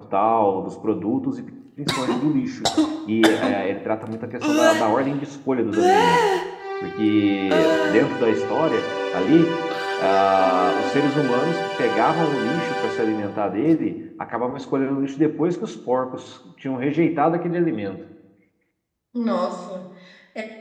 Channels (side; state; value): both; identical; correlation 1.00